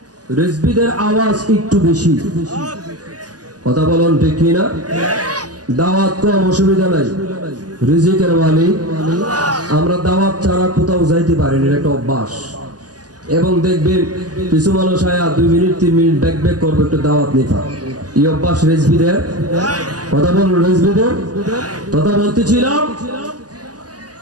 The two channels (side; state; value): left; late; 0.68 ms